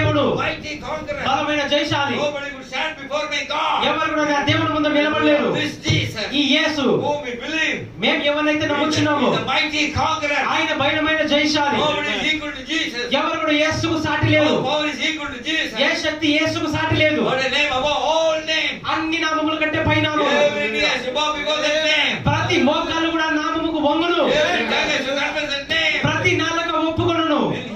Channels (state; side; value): identical; both; correlation 1.00